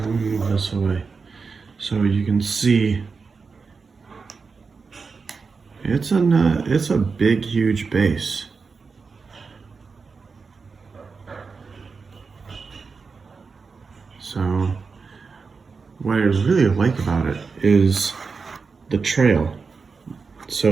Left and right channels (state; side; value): quieter; left; 4.9 dB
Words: me move this away so you can see it's a big, huge base. So what I really like about it is the trail.